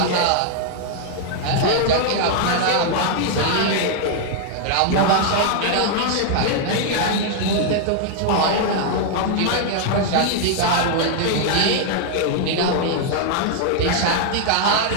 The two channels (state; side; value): different; both; correlation 0.00